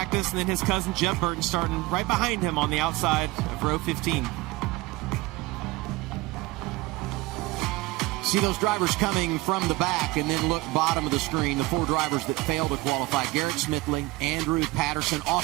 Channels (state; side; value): quieter; left; 20.7 dB